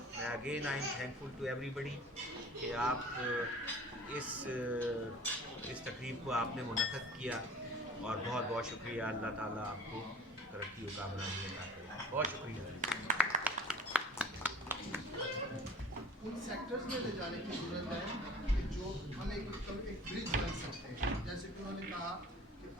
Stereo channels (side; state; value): both; normal; correlation 0.45